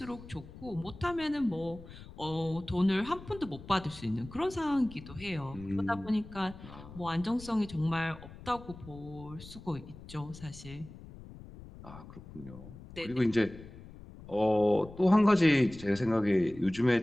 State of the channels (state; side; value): noise; left; rumble, 16 dB below the sound